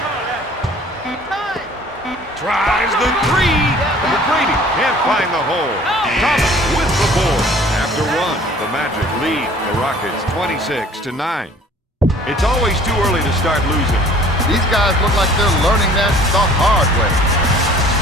Tries the 3. McGrady can't find the hole. Thomas with the board. After 1, the Magic lead the Rockets 26-9. It's always too early to start losing. These guys look like they're learning that the hard way.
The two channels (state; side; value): normal; both; correlation 0.51